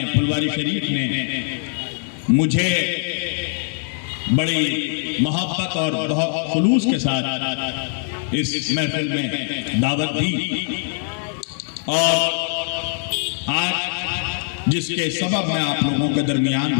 फुलवारी शरीफ ने मुझे बड़ी मोहब्बत और बहुत खुलूस के साथ इस महफिल में दावत दी और आज जिसके सबब मैं आप लोगों के दरमियान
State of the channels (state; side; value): silent; right; digital silence